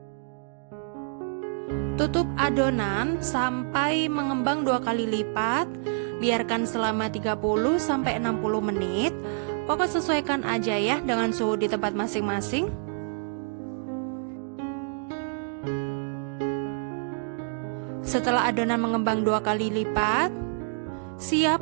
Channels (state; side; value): silent; left; digital silence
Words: Tutup adonan sampai mengembang 2 kali lipat. Biarkan selama 30-60 menit. Pokoknya sesuaikan aja ya dengan suhu di tempat masing-masing. Setelah adonan mengembang 2 kali lipat,